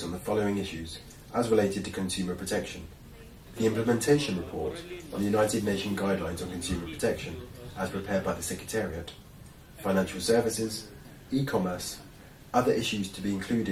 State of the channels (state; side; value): identical; both; correlation 1.00